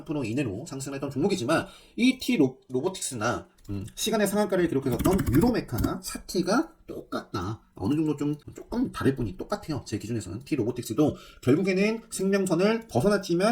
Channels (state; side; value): identical; both; correlation 1.00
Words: 이내로 상승했던 종목이지만 이 T 로보틱스나 시간의 상한가를 기록했었던 유로메카나 사티가 똑같다. 어느 정도 조금 다를 뿐이 똑같아요. 제 기준에서는 T 로보틱스도 결국에는 생명선을